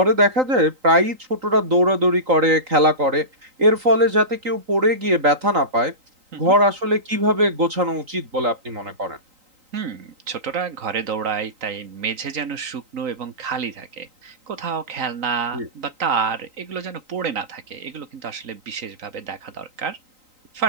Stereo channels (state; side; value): late; left; 3.9 ms